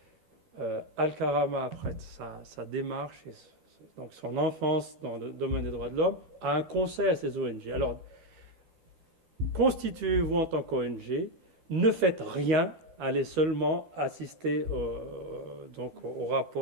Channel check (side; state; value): left; late; 12 ms